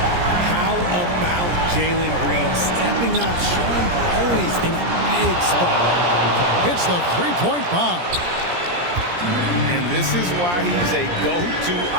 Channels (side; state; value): left; late; 17 ms